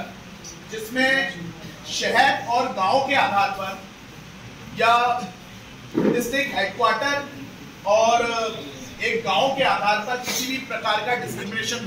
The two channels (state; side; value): identical; both; correlation 1.00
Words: जिसमें शहर और गांव के आधार पर या डिस्ट्रिक्ट हेडक्वार्टर और एक गांव के आधार पर किसी भी प्रकार का डिस्क्रिमिनेशन